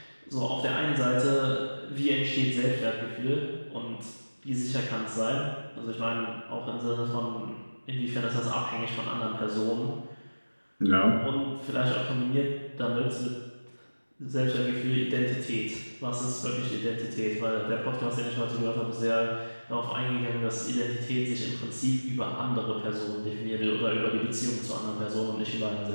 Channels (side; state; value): both; inverted; correlation -1.00